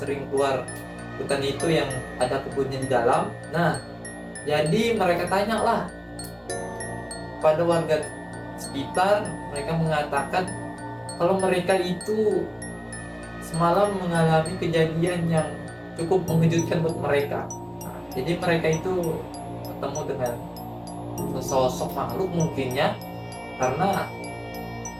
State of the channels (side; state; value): both; identical; correlation 1.00